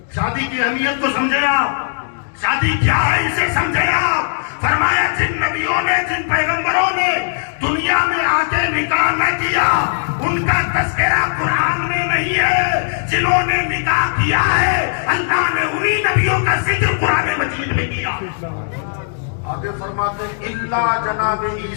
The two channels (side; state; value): right; silent; digital silence